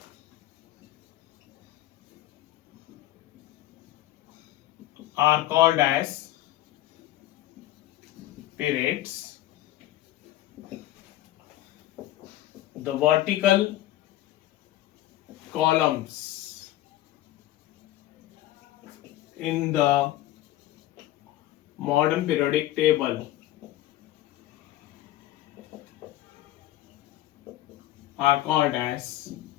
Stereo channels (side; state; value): right; quieter; 14.8 dB